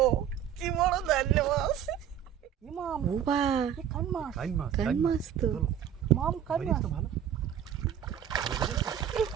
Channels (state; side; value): quieter; left; 9.5 dB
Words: কি বড় ধান্নি মাছ! মাম বাবা কান মাছ, কান মাছ তো। মাম কান মাছ ভালো